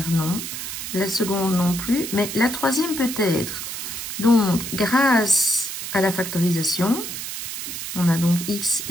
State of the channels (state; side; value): noise; right; hiss, 6 dB below the sound